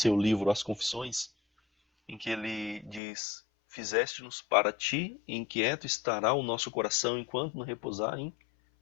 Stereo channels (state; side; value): drops out; right; at 3.0 s